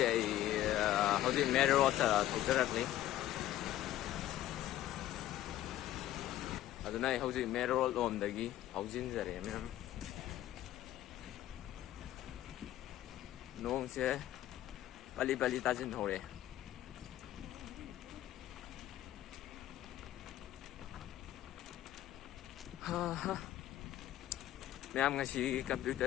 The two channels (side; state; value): right; quieter; 13.5 dB